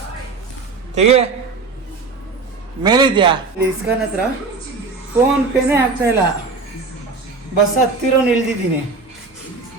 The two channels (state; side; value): quieter; left; 4.1 dB